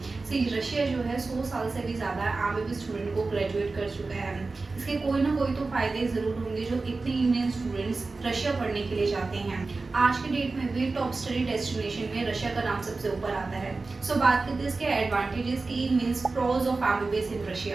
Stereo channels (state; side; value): quieter; left; 3.8 dB